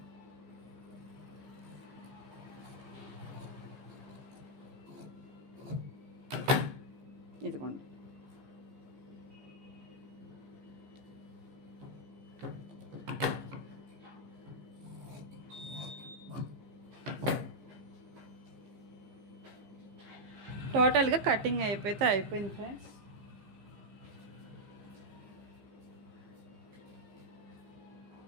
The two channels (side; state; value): left; late; 15 ms